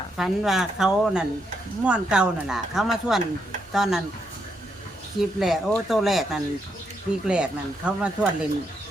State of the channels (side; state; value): both; normal; correlation 0.78